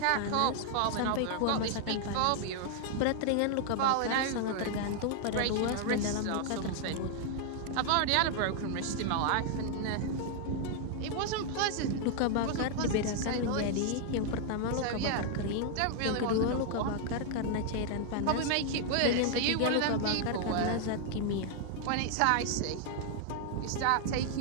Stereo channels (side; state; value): both; different; correlation 0.00